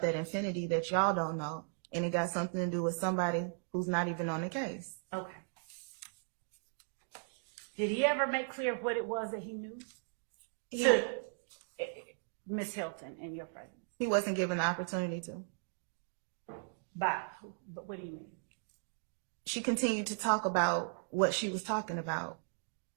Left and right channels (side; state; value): left; silent; digital silence